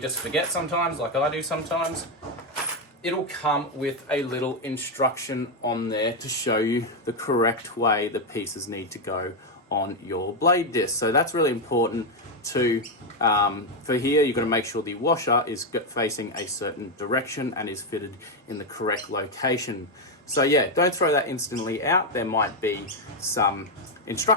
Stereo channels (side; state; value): both; normal; correlation 0.04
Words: forget sometimes, like I do sometimes, it'll come with a little instruction on there to show you the correct way the pieces need to go on your blade disc. So that's really important to, for here, you've got to make sure the washer is facing a certain direction and is fitted in the correct location. So yeah, don't throw that instantly out. There might be some